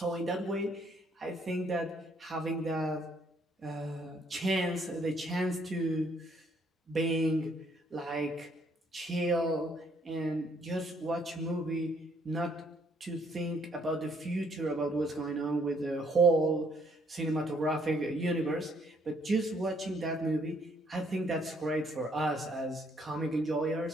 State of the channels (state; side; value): normal; both; correlation 0.67